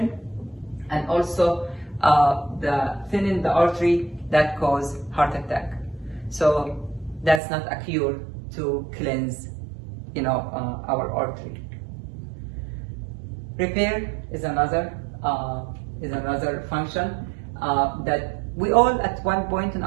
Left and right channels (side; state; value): left; drops out; at 7.4 s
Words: and also the thinning the artery that cause heart attack. So that's not a cure to cleanse, you know, our artery. Repair is another function that we all, at one point in